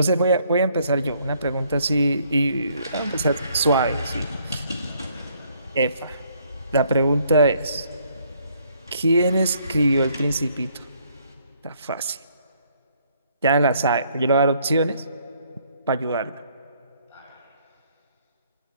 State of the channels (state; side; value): inverted; both; correlation -0.67